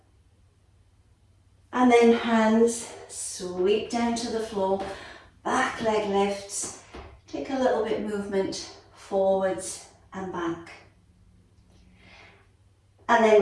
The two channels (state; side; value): identical; both; correlation 1.00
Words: And then hands sweep down to the floor, back leg lifts, take a little bit movement forwards and back. And then